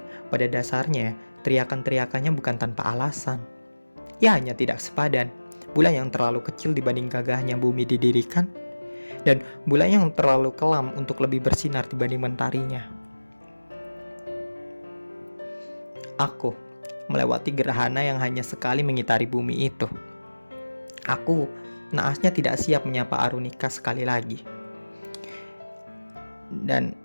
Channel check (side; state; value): both; inverted; correlation -1.00